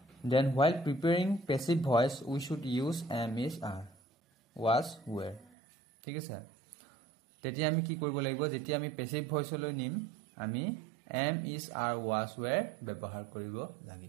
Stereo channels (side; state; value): left; drops out; at 5.5 s